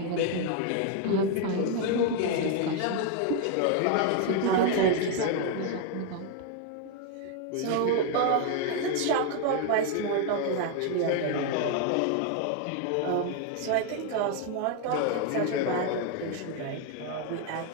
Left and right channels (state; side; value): different; both; correlation 0.01